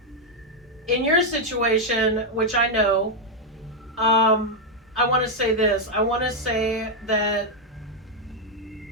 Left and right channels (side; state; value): both; normal; correlation 0.01